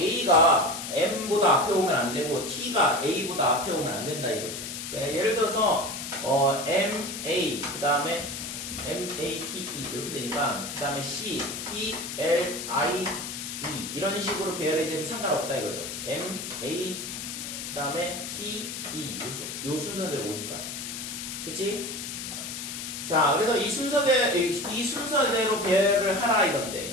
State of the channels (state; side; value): noise; left; hiss, 7 dB below the sound